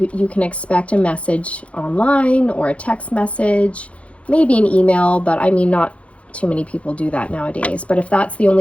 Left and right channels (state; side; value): late; right; 0.063 ms